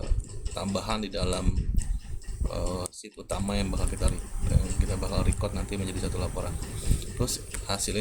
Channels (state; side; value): identical; both; correlation 1.00